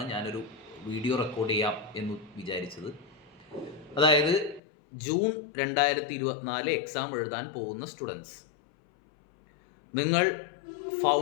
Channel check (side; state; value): right; drops out; at 4.6 s